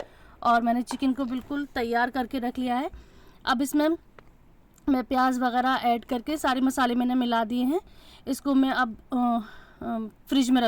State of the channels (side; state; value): both; identical; correlation 1.00